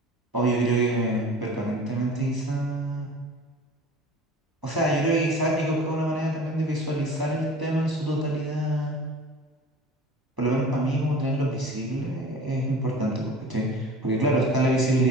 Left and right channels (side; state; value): both; normal; correlation 0.41